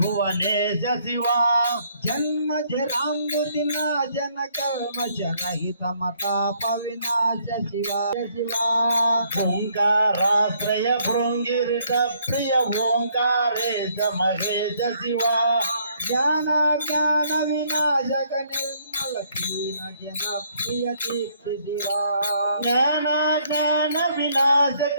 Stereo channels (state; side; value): inverted; both; correlation -0.67